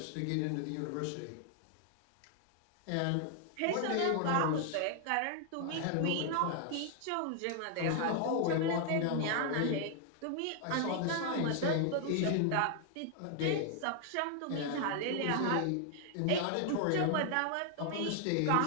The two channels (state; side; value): different; both; correlation 0.00